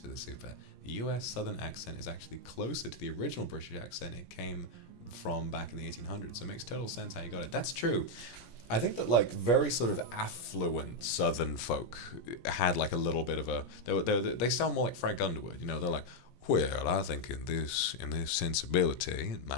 the super. The US Southern accent is actually closer to the original British accent it came from back in the 1800s, so it makes total sense how you got it. That's true. I think that like very sort of affluent Southern folk had like a little bit of a they sound more like Frank Underwood, you know. They're like, well, I think in this sensibility, it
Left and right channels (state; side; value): late; right; 17 ms